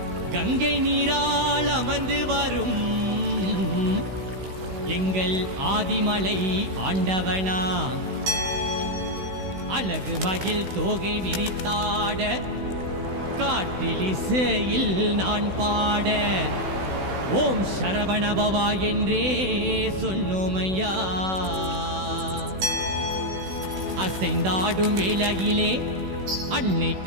கங்கை நீரால் அமர்ந்து வரும் எங்கள் ஆதிமலை ஆண்டவனா அழகு மகிழ் தோகை விரித்தாட காற்றில் இசையில் நான் பாட ஓம் சரவணபவா என்றே சொன்னோமையா. அசைந்தாடும் வேளையிலே அன்னை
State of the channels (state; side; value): late; left; 16 ms